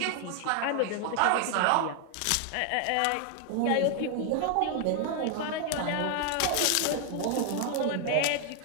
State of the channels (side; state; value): both; different; correlation 0.00